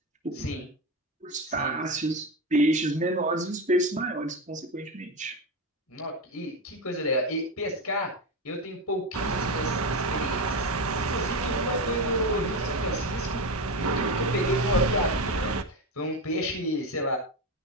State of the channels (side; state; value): both; normal; correlation 0.15